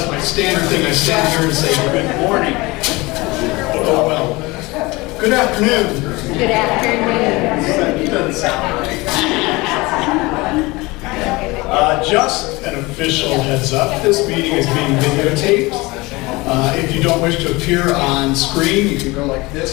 my standard thing. I stand here and say good morning. Oh well. Good afternoon. Good afternoon. That doesn't sound right. Just an official heads up. This meeting is being videotaped. If you don't wish to appear on screen, you can go like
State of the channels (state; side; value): quieter; right; 22.8 dB